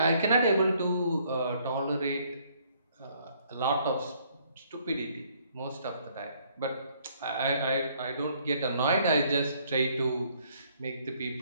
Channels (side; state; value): both; inverted; correlation -0.65